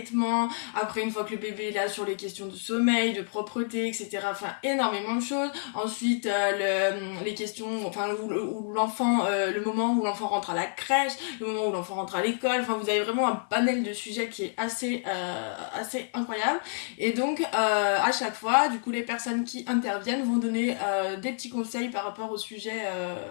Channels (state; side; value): silent; right; digital silence